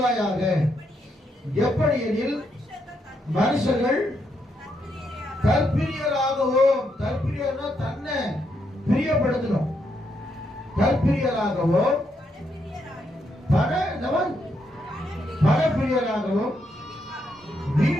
எப்படி எனில் மனுஷர்கள் தற்பிரியராகவும், தற்பிரியர்னா தன்னை பிரியப்படுத்தணும், தற்பிரியராகவும் பணப்பிரியராகவும்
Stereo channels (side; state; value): both; normal; correlation 0.78